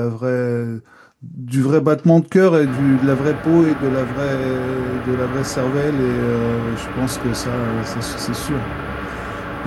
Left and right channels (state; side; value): identical; both; correlation 1.00